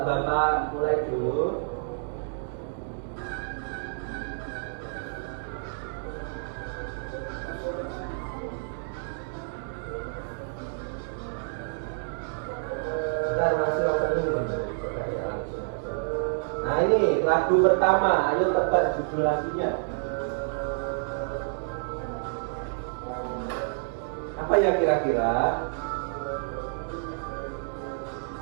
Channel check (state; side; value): silent; left; digital silence